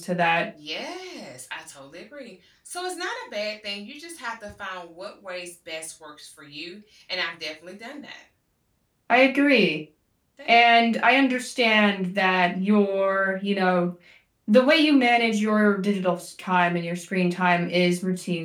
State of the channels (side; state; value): both; identical; correlation 1.00